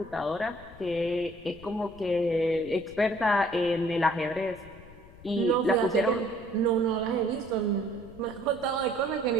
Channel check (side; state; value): left; noise; rumble, 20 dB below the sound